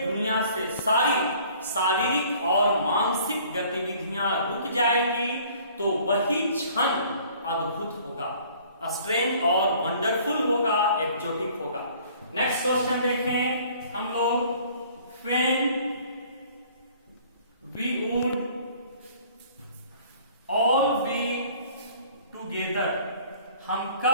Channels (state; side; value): inverted; both; correlation -0.54